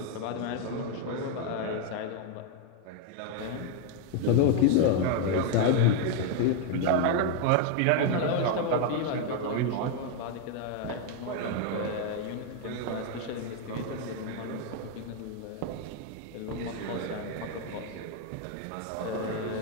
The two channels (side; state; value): both; different; correlation 0.01